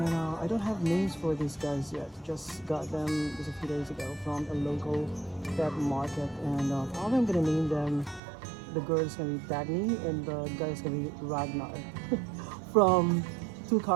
I don't have names for these guys yet. Just got them just a few days ago from a local pet market. And probably I'm gonna name them. The girl is gonna be Dagny and the guy is gonna be Ragnar from two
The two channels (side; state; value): left; drops out; at 8.2 s